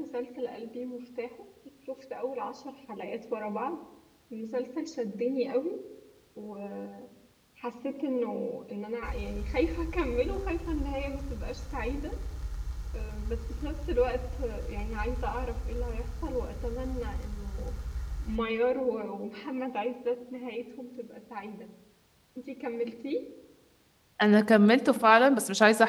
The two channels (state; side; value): identical; both; correlation 1.00